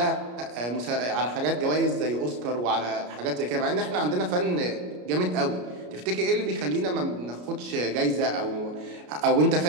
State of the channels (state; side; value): late; left; 33 ms